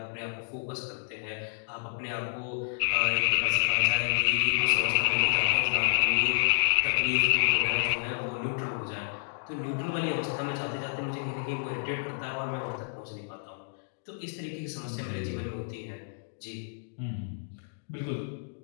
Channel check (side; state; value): right; silent; digital silence